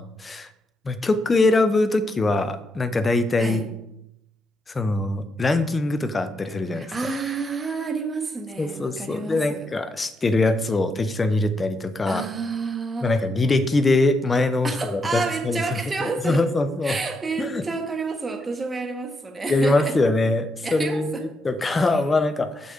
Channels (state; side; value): normal; both; correlation 0.81